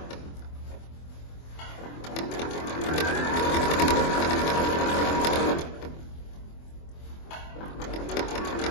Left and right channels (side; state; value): right; late; 24 ms